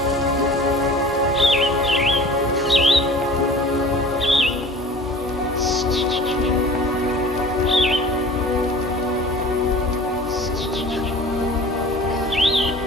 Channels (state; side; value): normal; both; correlation 0.43